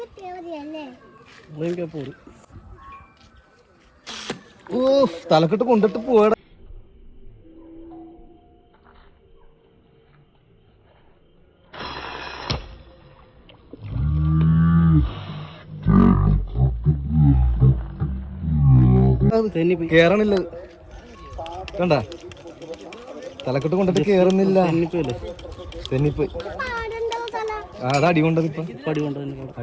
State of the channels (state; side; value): identical; both; correlation 1.00